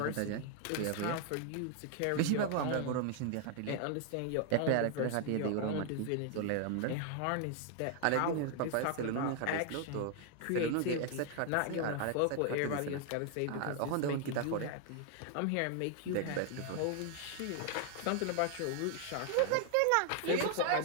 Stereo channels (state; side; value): different; both; correlation 0.00